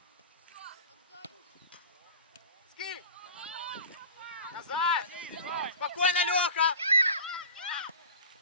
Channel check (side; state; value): both; inverted; correlation -0.37